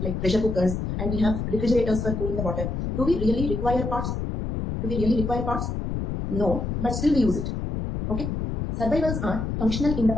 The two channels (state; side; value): noise; left; rumble, 3 dB below the sound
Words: like pressure cookers, and we have refrigerators for cooling the water. Do we really require pots? Do we really require pots? No, but still we use it. Okay. Survivals are functional in the